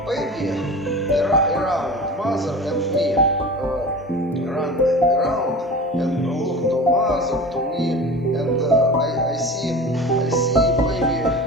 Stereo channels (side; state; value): both; normal; correlation 0.35